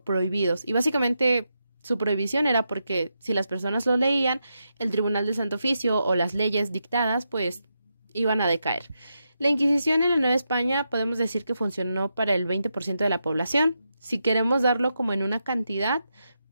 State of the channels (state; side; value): inverted; both; correlation -0.85